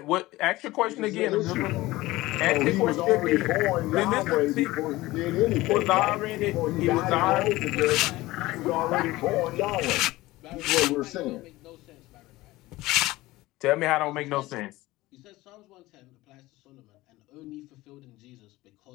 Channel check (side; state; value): right; quieter; 18.7 dB